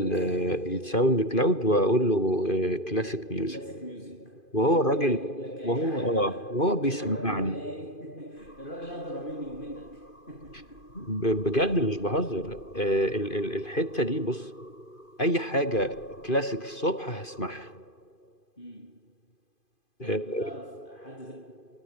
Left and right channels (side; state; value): right; late; 2.5 ms